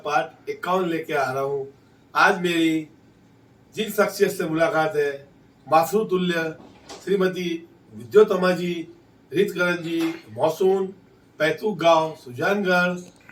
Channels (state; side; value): identical; both; correlation 1.00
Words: पार्ट 51 लेके आ रहा हूँ। आज मेरी जिन शख्सियत से मुलाकात है, मासरू तुल्य श्रीमती विद्योतमा जी, रितकरण जी, मौसून, पैतुक गांव, सुजानगढ़,